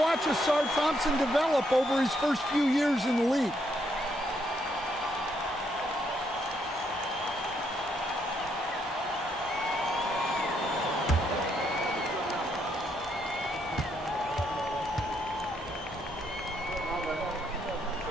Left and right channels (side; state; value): both; normal; correlation 0.75